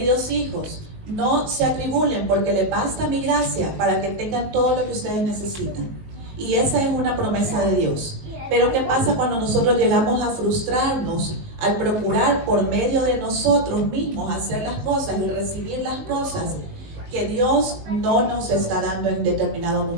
hijos, no se atribulen porque les basta mi gracia para que tengan todo lo que ustedes necesitan. Y esa es una promesa de Dios. Pero ¿qué pasa cuando nosotros llegamos a frustrarnos al procurar por medio de nosotros mismos hacer las cosas y recibir las cosas que Dios no nos está dando en determinado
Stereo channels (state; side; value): late; left; 19 ms